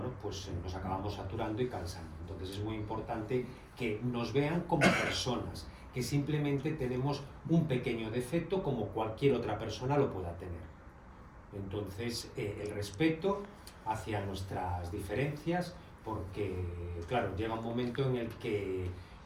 pues nos acabamos saturando y cansando. Entonces es muy importante que nos vean como personas, que simplemente tenemos un pequeño defecto como cualquier otra persona lo pueda tener. Entonces el respeto hacia nuestras diferencias, porque claro, llega un momento en el que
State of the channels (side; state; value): both; identical; correlation 1.00